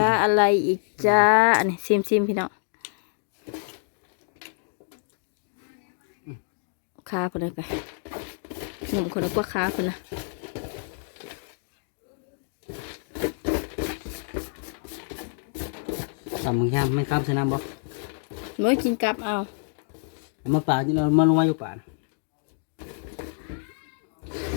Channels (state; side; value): silent; right; digital silence